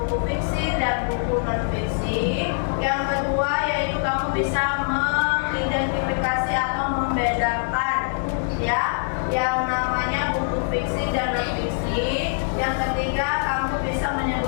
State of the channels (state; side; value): silent; right; digital silence